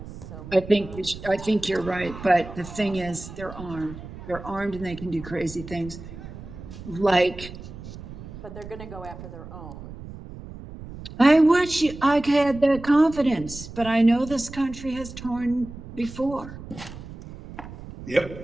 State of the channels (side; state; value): right; noise; rumble, 13 dB below the sound